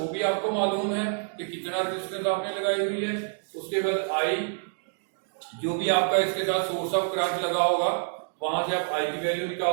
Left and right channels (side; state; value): left; silent; digital silence